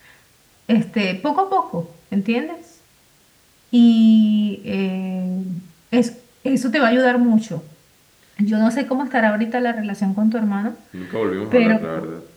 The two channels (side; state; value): both; identical; correlation 1.00